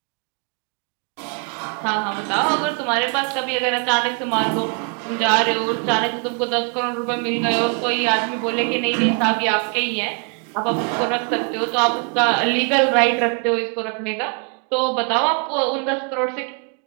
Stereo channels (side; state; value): left; quieter; 37.7 dB